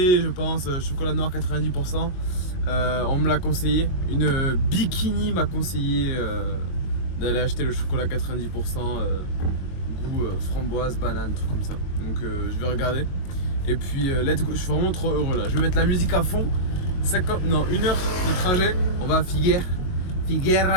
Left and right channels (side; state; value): right; late; 22 ms